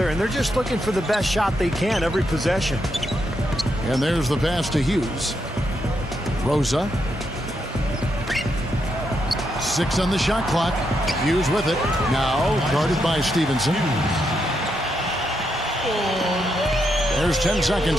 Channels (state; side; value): normal; both; correlation 0.81